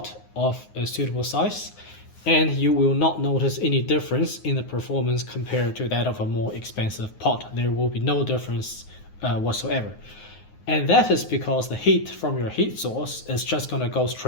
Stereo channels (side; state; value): right; late; 9.5 ms